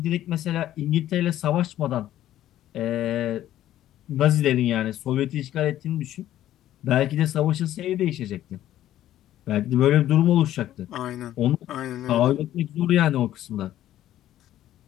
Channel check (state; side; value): quieter; right; 12.8 dB